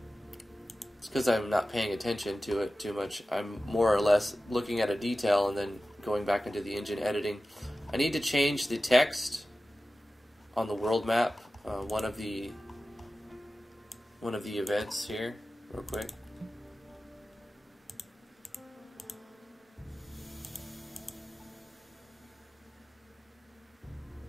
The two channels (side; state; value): both; normal; correlation 0.95